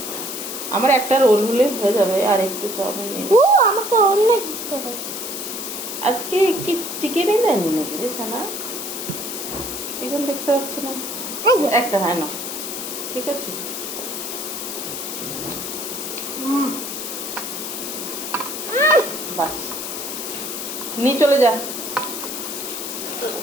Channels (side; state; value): left; noise; hiss, 5 dB below the sound